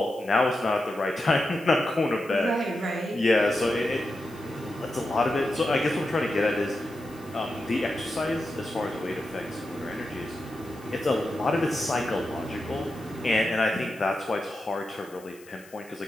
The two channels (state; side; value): noise; left; hiss, 24 dB below the sound